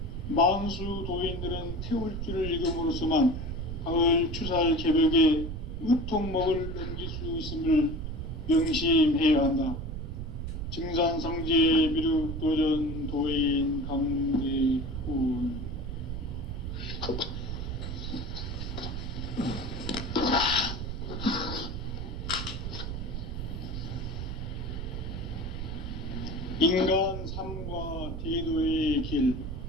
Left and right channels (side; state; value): right; noise; rumble, 5 dB below the sound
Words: 만수 도인들은 태울주를 읽음으로써만 가을 추살 개벽의 의통목을 넘길 수 있음을 명심해야 한다. 증산상제 미륵도전 도인 강대훈. 인간 삶과 대도의 길.